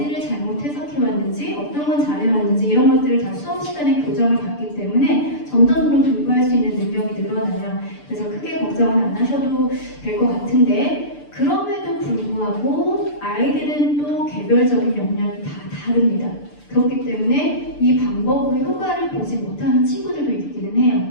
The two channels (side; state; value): right; late; 6.8 ms